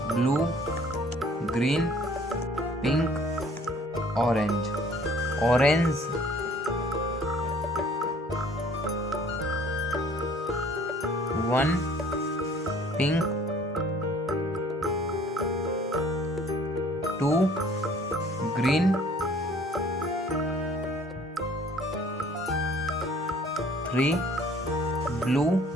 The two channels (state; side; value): normal; both; correlation 0.55